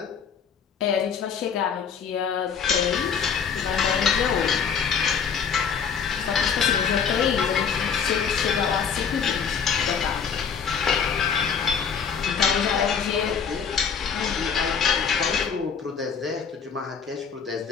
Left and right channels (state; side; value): quieter; right; 6.7 dB